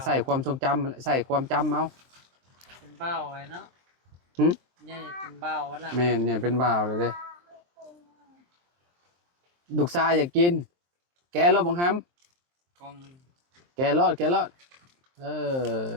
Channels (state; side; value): late; left; 23 ms